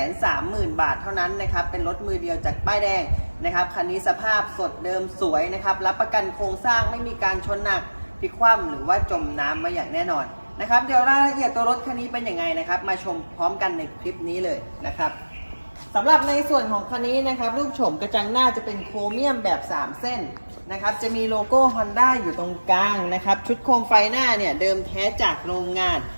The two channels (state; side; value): inverted; both; correlation -1.00